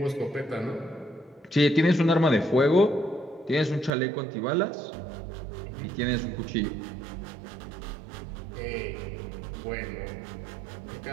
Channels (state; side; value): drops out; left; at 3.9 s